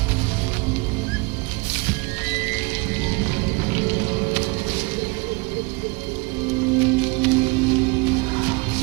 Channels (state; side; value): quieter; left; 26.9 dB